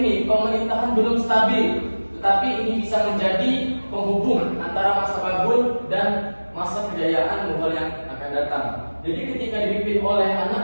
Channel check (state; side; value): inverted; both; correlation -1.00